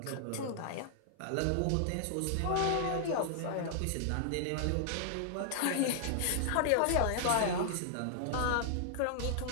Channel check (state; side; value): different; both; correlation -0.01